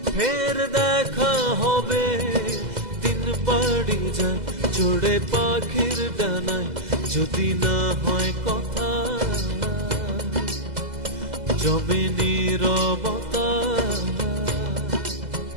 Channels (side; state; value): left; late; 2.0 ms